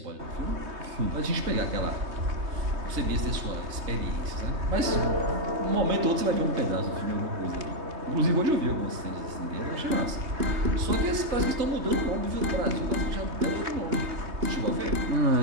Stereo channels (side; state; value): left; late; 3.3 ms